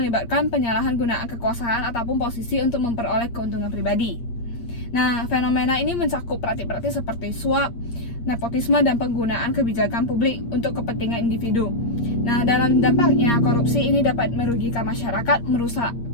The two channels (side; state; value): right; late; 8.6 ms